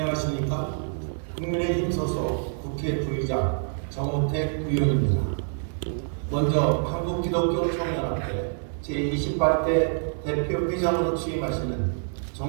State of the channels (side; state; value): left; silent; digital silence